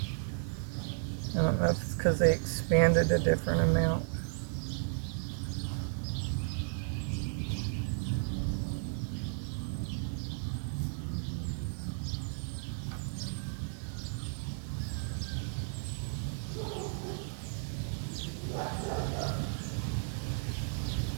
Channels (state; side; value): silent; left; digital silence